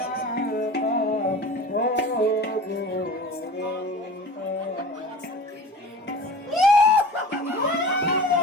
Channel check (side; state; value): both; normal; correlation 0.38